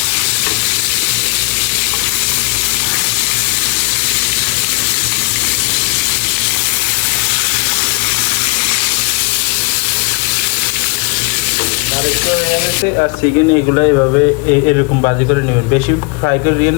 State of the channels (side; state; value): right; quieter; 30.0 dB